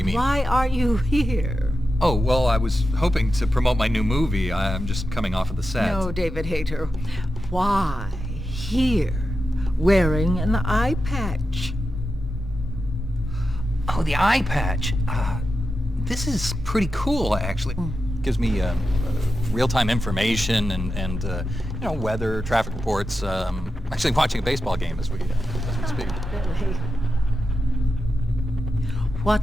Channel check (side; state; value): both; normal; correlation 0.90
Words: you mean? Why are you here? Oh, well, I was hoping to promote my new movie. I'm just coming off of the set. No, David Hayter. Why here, wearing an eye patch? Oh, the eye patch. This is pretty cool, actually. Gives me real-time information and weather, traffic reports. Actually watching a baseball game as we speak. Really? What